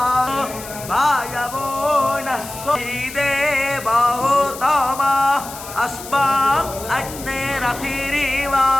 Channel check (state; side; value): noise; left; hiss, 13 dB below the sound